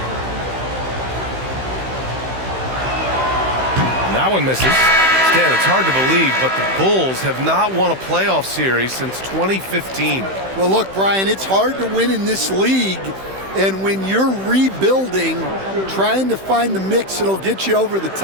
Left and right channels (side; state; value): left; late; 16 ms